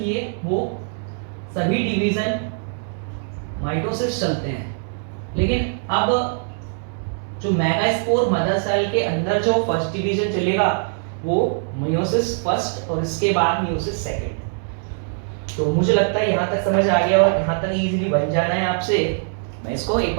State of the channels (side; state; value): left; silent; digital silence